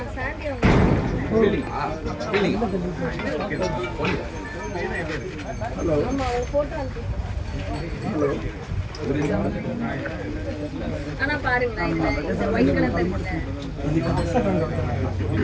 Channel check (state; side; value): identical; both; correlation 1.00